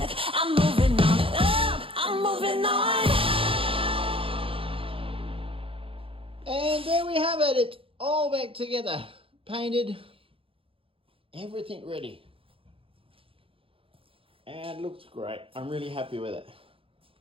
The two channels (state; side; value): late; left; 0.26 ms